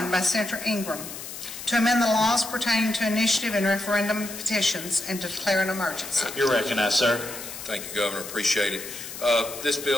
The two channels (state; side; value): noise; left; hiss, 10 dB below the sound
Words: by Senator Ingram to amend the laws pertaining to initiative and referendum petitions and to declare an emergency. You're recognized, sir. Thank you, Governor. Appreciate it. This